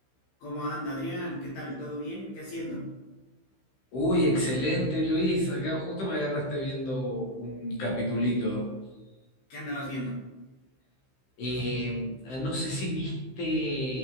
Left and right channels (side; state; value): right; late; 15 ms